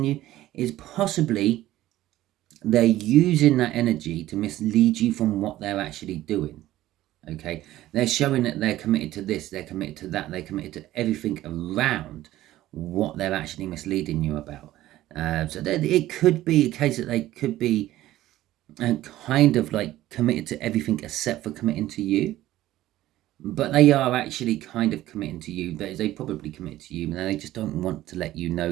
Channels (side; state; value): left; quieter; 15.0 dB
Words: you is possibly they're using that energy to mislead you from what they're actually doing. Okay, they're showing that they're committed to this, they're committed to that, they're committed to everything around what they're actually misleading you about. So it could be a case that they could be kind of like committed to everything except for committing to you, but they are actually kind of committing to you. They probably commit to you, and they just don't want to let you